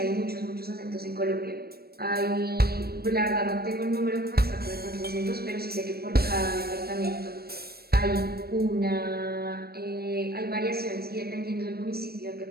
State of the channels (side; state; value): left; late; 0.45 ms